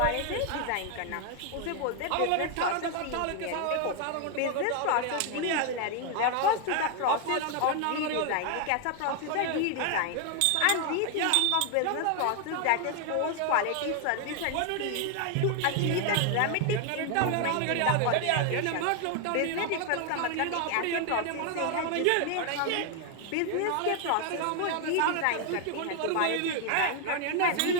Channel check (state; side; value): different; both; correlation 0.00